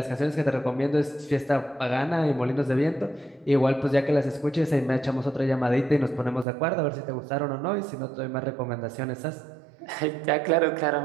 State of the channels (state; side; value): drops out; left; at 6.5 s